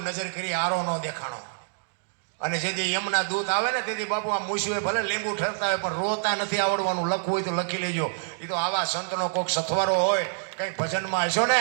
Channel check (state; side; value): silent; left; digital silence